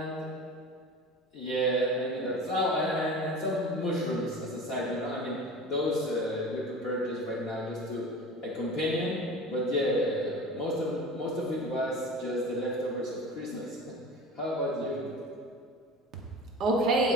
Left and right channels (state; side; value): normal; both; correlation 0.35